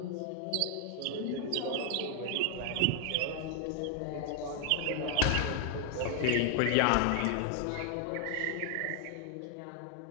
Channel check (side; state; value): both; different; correlation 0.00